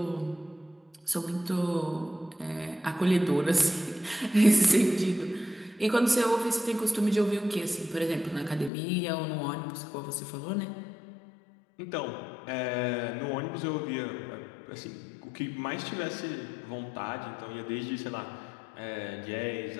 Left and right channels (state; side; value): drops out; right; at 8.7 s